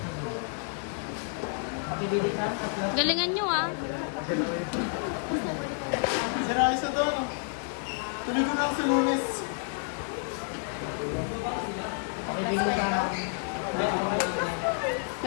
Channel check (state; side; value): silent; right; 58 dB below the other